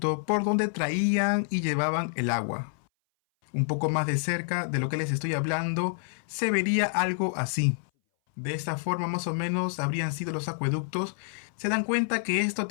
por donde traían y llevaban el agua. Un poco más de cerca de lo que les estoy hablando, se vería algo así. De esta forma más o menos habrían sido los acueductos. ¿Se dan cuenta que esto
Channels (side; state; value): right; silent; 58 dB below the other